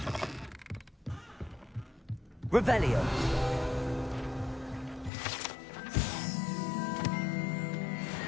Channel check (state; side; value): drops out; right; at 5.1 s